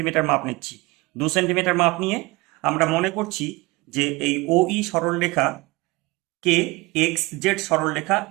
মাপ নিচ্ছি। 2 সেন্টিমিটার মাপ নিয়ে আমরা মনে করছি যে এই OE সরলরেখা কে XZ সরলরেখা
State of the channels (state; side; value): quieter; left; 23.1 dB